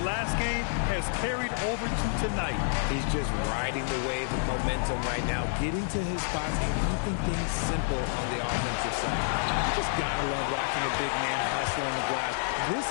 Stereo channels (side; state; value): right; silent; digital silence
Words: last game has carried over to tonight. He's just riding the wave of momentum right now, getting to his spots and keeping things simple on the offensive side. You just gotta love watching a big man hustle on the glass. This